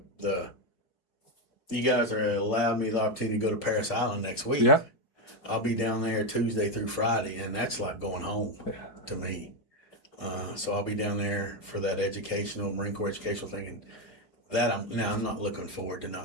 you guys are allowed me the opportunity to go to Paris Island next week. Yeah. I'll be down there Tuesday through Friday, and that's like going home to me. So I'll be down there for that Marine Corps educational thing. And that I'm not looking forward to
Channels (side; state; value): right; late; 4.7 ms